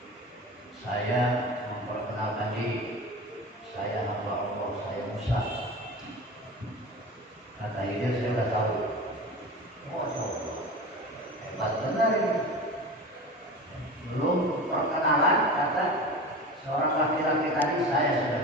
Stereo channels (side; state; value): both; normal; correlation 0.32